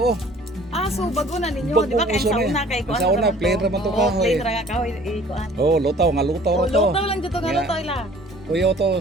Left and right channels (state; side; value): normal; both; correlation 0.52